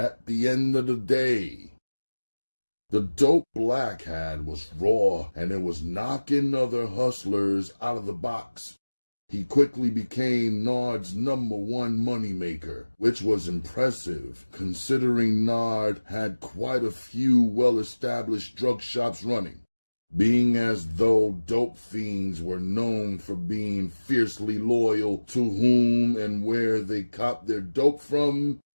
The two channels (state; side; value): inverted; both; correlation -1.00